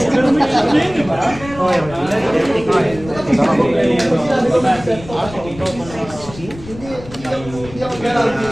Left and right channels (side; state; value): left; noise; rumble, 16 dB below the sound